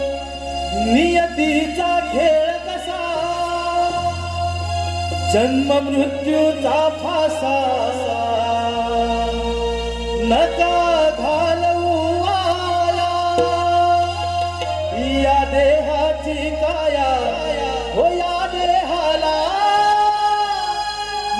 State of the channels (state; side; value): identical; both; correlation 1.00